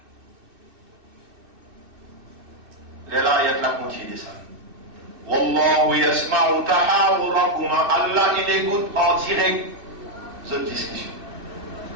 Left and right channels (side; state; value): left; late; 2.6 ms